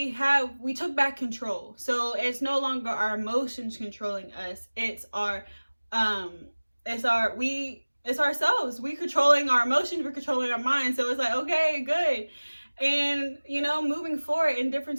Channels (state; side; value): inverted; both; correlation -1.00